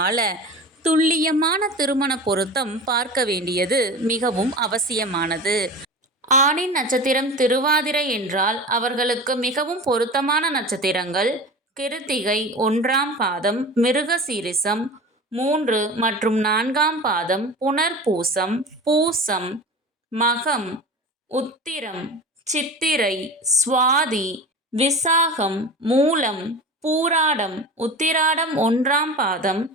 துல்லியமான திருமண பொருத்தம் பார்க்க வேண்டியது மிகவும் அவசியமானது. ஆணின் நட்சத்திரம் திருவாதிரை என்றால் அவர்களுக்கு மிகவும் பொருத்தமான நட்சத்திரங்கள் கிருத்திகை 1ஆம் பாதம், மிருகசீரிசம் 3 மற்றும் 4ஆம் பாதம், புனர்பூசம், பூசம், மகம், உத்திரம், சித்திரை, சுவாதி, விசாகம், மூலம், பூராடம், உத்திராடம் 1ஆம் பாதம்,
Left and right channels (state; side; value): normal; both; correlation 0.33